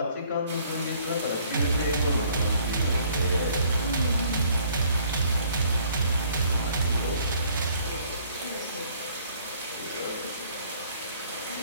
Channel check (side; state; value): both; inverted; correlation -0.60